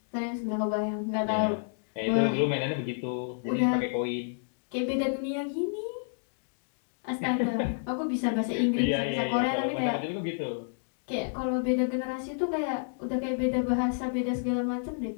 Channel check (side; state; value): right; silent; digital silence